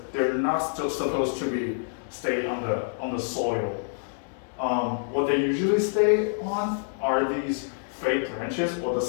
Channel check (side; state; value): right; silent; digital silence